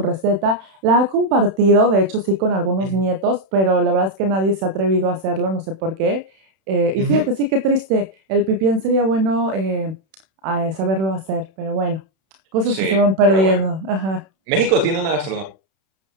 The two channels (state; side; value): late; left; 31 ms